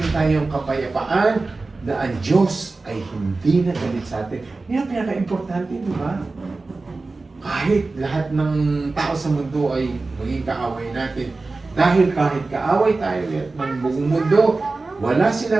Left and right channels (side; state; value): left; quieter; 3.6 dB